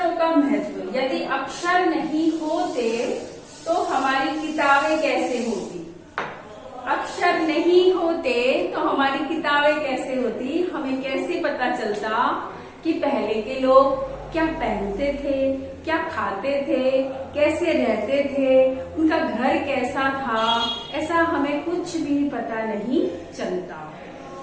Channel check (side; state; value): both; identical; correlation 1.00